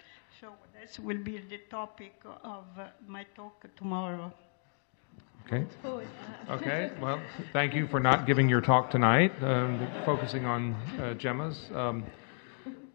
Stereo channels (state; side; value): silent; right; 56 dB below the other